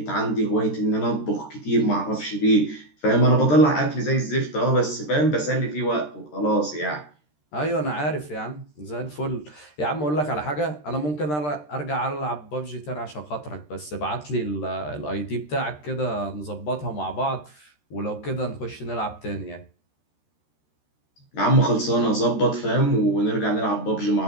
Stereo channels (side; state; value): right; late; 13 ms